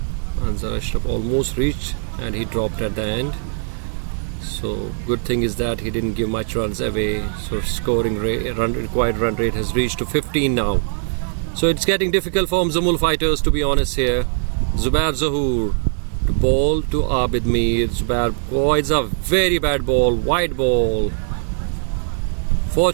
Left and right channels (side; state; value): left; silent; digital silence